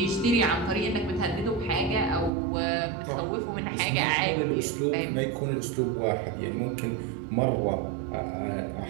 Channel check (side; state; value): left; drops out; at 2.3 s